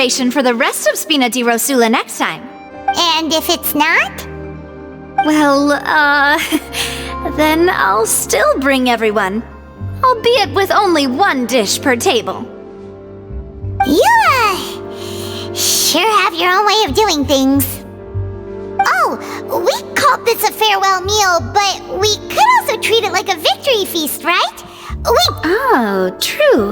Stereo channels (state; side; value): identical; both; correlation 1.00